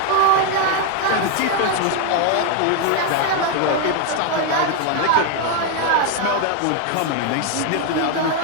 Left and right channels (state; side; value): different; both; correlation 0.01